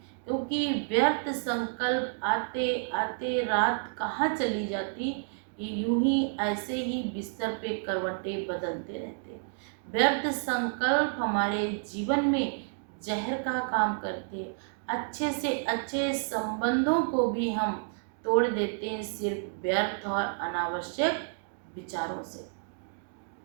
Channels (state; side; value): silent; left; digital silence